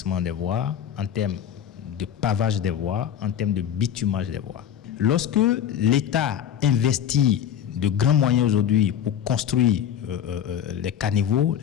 des voies, en termes de pavage des voies, en termes de bitumage des voies. Lorsque l'État investit de grands moyens aujourd'hui pour construire les caniveaux,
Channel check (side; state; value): right; quieter; 9.4 dB